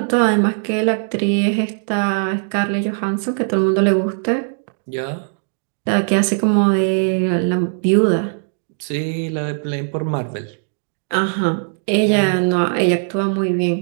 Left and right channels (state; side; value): silent; left; digital silence